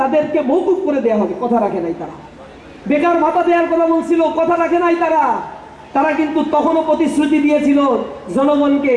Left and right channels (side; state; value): both; identical; correlation 1.00